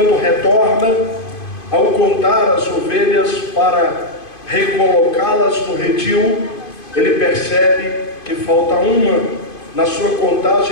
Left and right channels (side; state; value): right; late; 2.5 ms